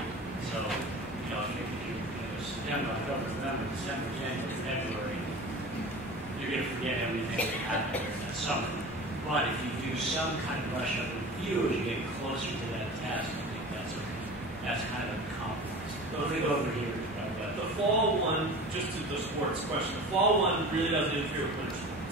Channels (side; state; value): both; normal; correlation 0.36